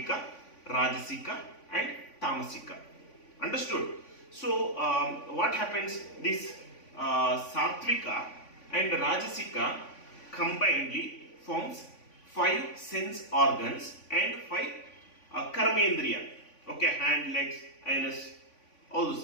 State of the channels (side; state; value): right; late; 3.5 ms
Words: Rajasika and Tamasika. Understood? So what happens? This Satvika and Rajasika combinedly forms 5 sense organs and 5 karmendriya. Okay, hand, legs, anus, all